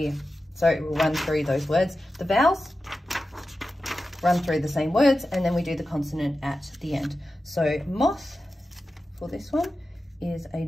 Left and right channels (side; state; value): both; normal; correlation 0.93